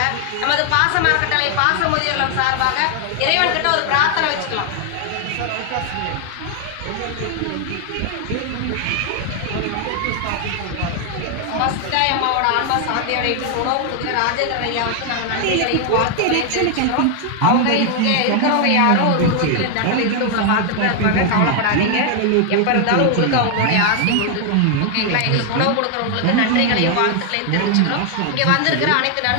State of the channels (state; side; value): different; both; correlation 0.00